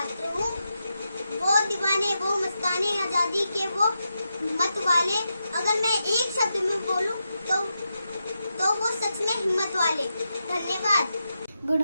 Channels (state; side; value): inverted; both; correlation -0.87